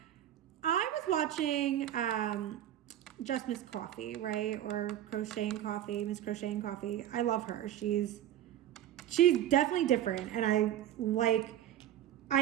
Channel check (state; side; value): quieter; left; 11.7 dB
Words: I was watching Just Miss Coffee, right? Or Crocheting Coffee, Miss Crocheting Coffee. I love her. She's definitely different, and I